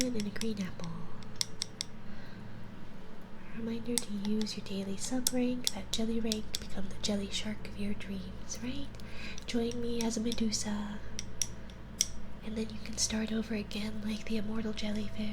and a green apple. Reminder to use your daily sub rank, that jelly rank, to become the jelly shark of your dreams, right? Join me as a Medusa, and then you can start over again like the immortal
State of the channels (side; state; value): both; identical; correlation 1.00